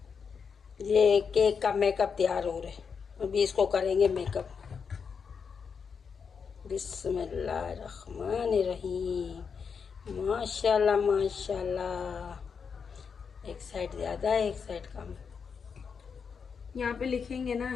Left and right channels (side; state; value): right; quieter; 6.1 dB